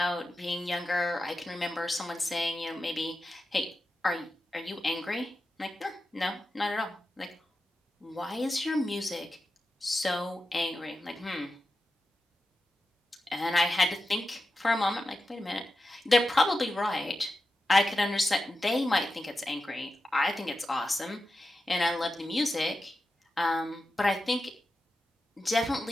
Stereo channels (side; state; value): both; normal; correlation 0.91